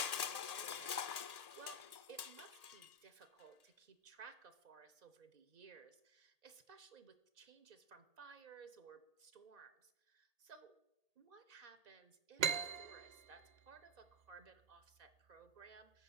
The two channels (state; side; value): late; left; 1.8 ms